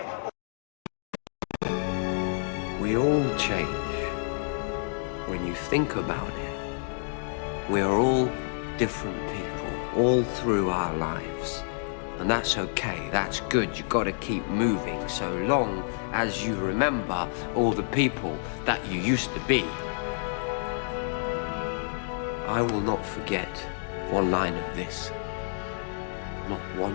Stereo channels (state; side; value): silent; right; digital silence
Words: We all change. When you think about it, we are all different people, all through our lives. And that's okay, that's good, you gotta keep moving, so long as you remember all the people that you used to be. I will not forget one line of this. Not